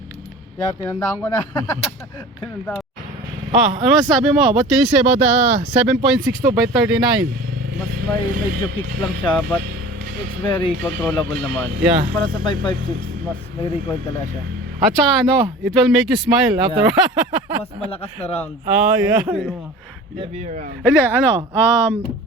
Yeah, tinandaan ko na. Tinandaan. Ano masasabi mo? What can you say about the 7.62 by 39? Mas medyo kick lang siya, but it's very controllable naman. Yeah. Para sa 5.56, mas may recoil talaga siya. At saka ano, it will make you smile after. Mas malakas na round. Oh, yeah. Heavier round. Hindi, ano,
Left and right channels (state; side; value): normal; both; correlation 0.40